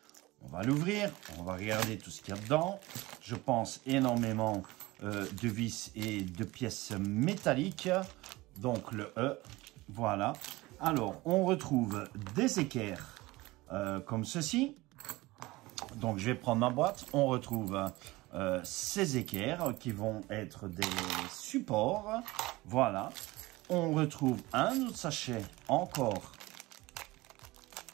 On va l'ouvrir, on va regarder tout ce qu'il y a dedans. Je pense énormément de vis et de pièces métalliques. Donc, le E, voilà. Alors, on retrouve des équerres comme ceci. Donc, je vais prendre ma boîte. On retrouve ces équerres qui vont être des supports. Voilà. On retrouve un autre sachet encore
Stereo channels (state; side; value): quieter; left; 20.5 dB